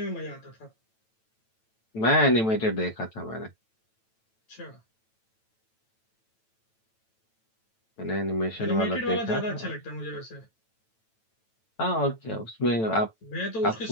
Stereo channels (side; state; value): right; late; 9.0 ms